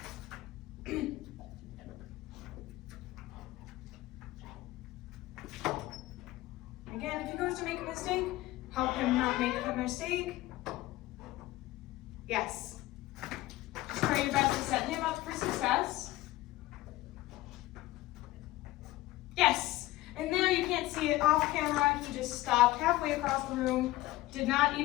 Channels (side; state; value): right; quieter; 17.7 dB